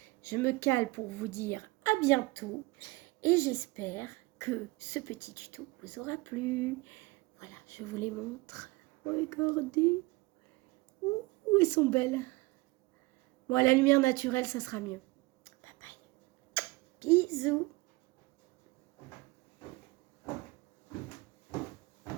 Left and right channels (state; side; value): quieter; left; 22.5 dB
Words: je me cale pour vous dire à bientôt et j'espère que ce petit tuto vous aura plu. Voilà, je vous les montre, regardez, ouh, elles sont belles. Bon, à la lumière naturelle, ça sera mieux. Bye bye, bisous.